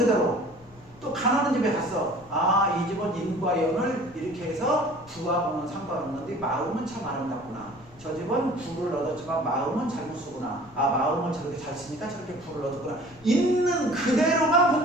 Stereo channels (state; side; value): noise; left; rumble, 26 dB below the sound